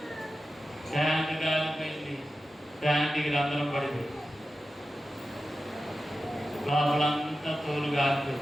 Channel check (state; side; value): normal; both; correlation 0.93